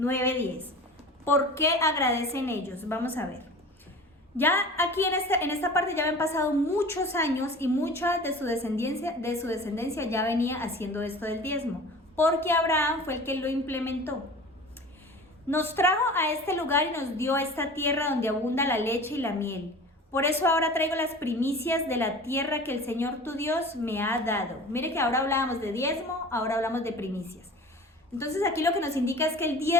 10. ¿Por qué agradecen ellos? Vamos a ver. Ya aquí en esta parte ya habían pasado muchos años y mucha de su descendencia ya venía haciendo esto del diezmo, porque Abraham fue el que lo implementó. Nos trajo a este lugar y nos dio esta tierra donde abunda la leche y la miel. Por eso ahora traigo las primicias de la tierra que el Señor tu Dios me ha dado. Mire que ahora hablábamos de diezmo, ahora hablamos de primicias. Entonces aquí lo que nos indica es que el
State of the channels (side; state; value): both; normal; correlation 0.39